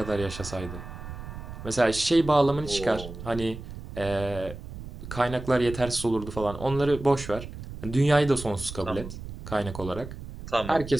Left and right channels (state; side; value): noise; right; rumble, 11 dB below the sound